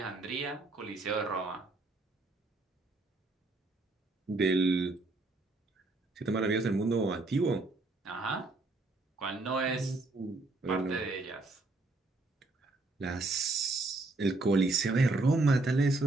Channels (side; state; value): left; quieter; 3.2 dB